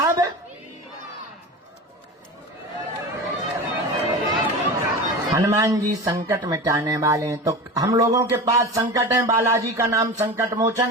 हनुमान जी संकट मिटाने वाले हैं। तो हम लोगों के पास संकट है, बालाजी का नाम संकट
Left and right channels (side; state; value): both; normal; correlation 0.29